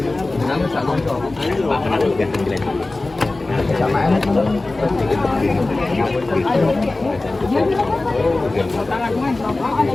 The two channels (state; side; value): quieter; right; 3.1 dB